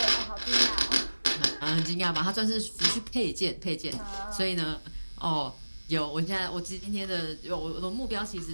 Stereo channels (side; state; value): both; inverted; correlation -1.00